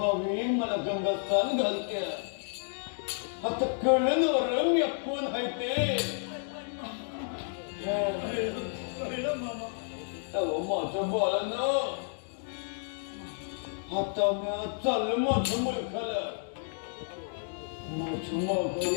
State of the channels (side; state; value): right; silent; digital silence